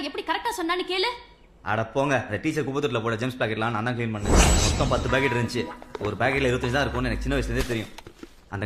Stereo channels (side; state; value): both; identical; correlation 1.00